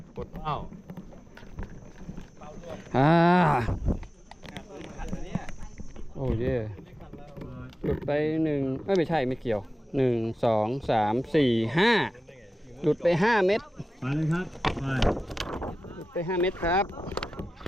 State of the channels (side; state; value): both; normal; correlation 0.94